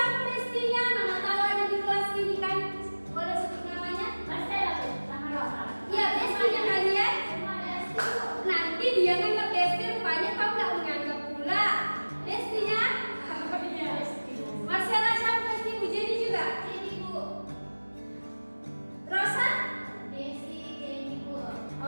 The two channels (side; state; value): both; inverted; correlation -1.00